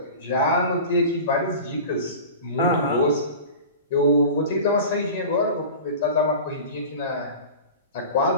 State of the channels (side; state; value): both; inverted; correlation -0.35